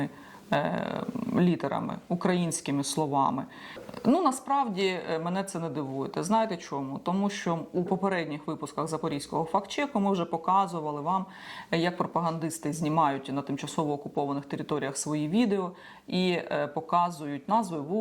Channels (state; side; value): identical; both; correlation 1.00